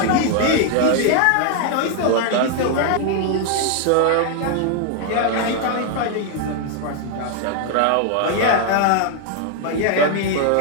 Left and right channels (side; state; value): both; different; correlation 0.00